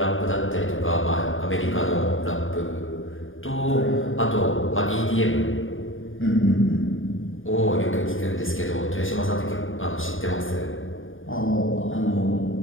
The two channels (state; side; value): late; right; 0.58 ms